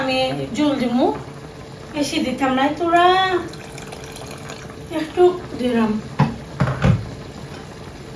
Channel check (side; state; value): both; identical; correlation 1.00